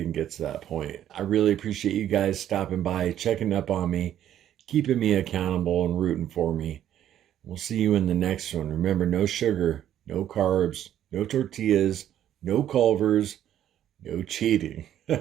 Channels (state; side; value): quieter; left; 11.1 dB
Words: get to that point. I really appreciate you guys stopping by, checking up on me, keeping me accountable and rooting for me. We'll see you in the next one. Remember, no sugar, no carbs, no tortillas, no Culvers, no cheating.